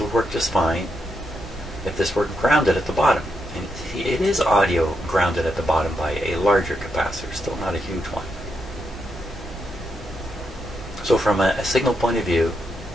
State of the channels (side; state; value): both; normal; correlation 0.82